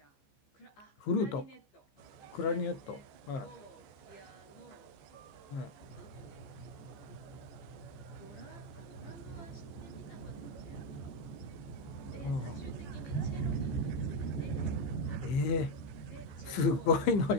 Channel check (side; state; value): right; late; 15 ms